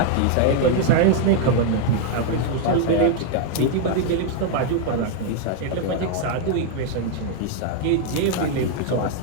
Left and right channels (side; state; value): both; different; correlation 0.00